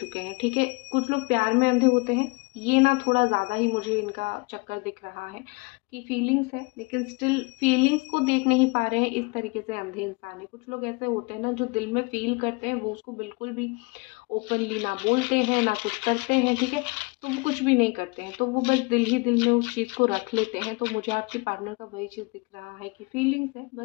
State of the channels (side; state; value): right; quieter; 28.3 dB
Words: हैं। ठीक है, कुछ लोग प्यार में अंधे होते हैं, ये ना थोड़ा ज़्यादा ही मुझे इनका चक्कर दिख रहा है कि फीलिंग्स है, लेकिन स्टिल फीलिंग्स को देख नहीं पा रहे हैं, इस तरीके से अंधे इंसान है। कुछ लोग ऐसे होते हैं ना, जो दिल में फील करते हैं, वो उसको बिल्कुल भी ओपनली ना बोलते हैं, ना कुछ करते हैं। ठीक है, तो वो कुछ भी नहीं करते हैं, तो वो बस दिल ही दिल में उस चीज़ को रख लेते हैं। तो मुझे आपके पार्टनर का वही चीज़ दिख रहा है कि फीलिंग्स है,